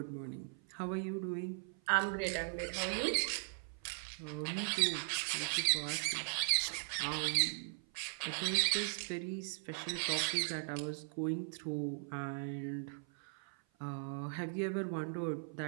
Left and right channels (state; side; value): silent; left; 52 dB below the other